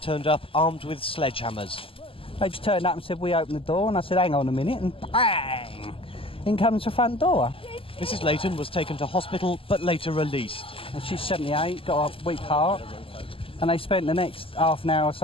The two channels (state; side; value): late; right; 0.26 ms